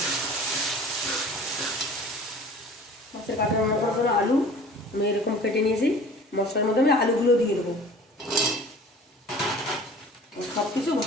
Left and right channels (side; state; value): both; normal; correlation 0.45